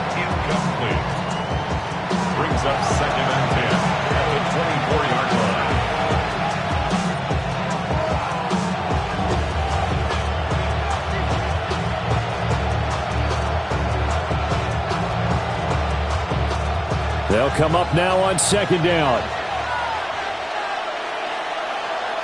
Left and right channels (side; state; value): both; identical; correlation 1.00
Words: Incomplete. Brings up 2nd and 10 at the 24-yard line. They'll come up now on 2nd down.